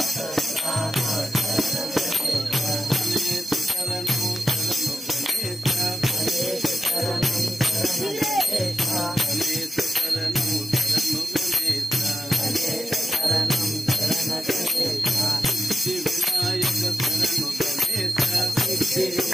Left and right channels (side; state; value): both; normal; correlation 0.90